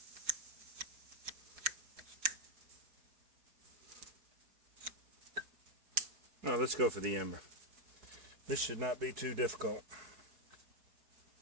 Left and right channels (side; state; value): left; late; 4.7 ms